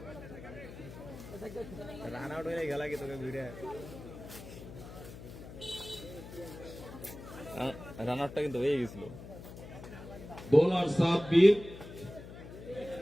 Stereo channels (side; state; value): left; noise; hum, 14 dB below the sound